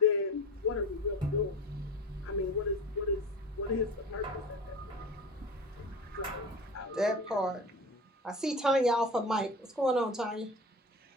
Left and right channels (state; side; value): normal; both; correlation 0.32